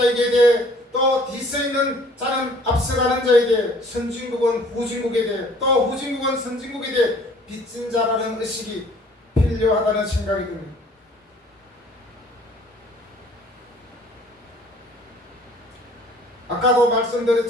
대해 또 뒤서 있는 자는 앞서가는 자에게 선진국은 후진국에 대해 또 후진국은 선진국에 대해 빚진 자라는 의식이 필요하다는 생각이 듭니다. 아까도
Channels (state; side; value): normal; both; correlation 0.55